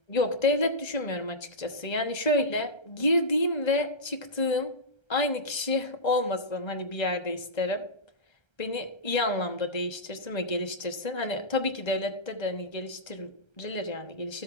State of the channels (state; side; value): late; right; 1.3 ms